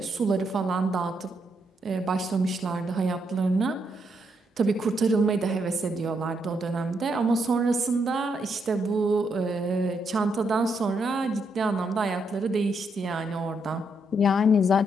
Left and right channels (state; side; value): normal; both; correlation 0.78